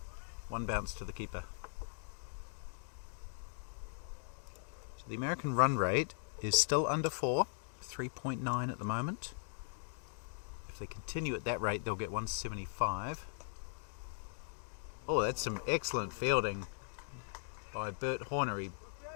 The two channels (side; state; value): right; silent; digital silence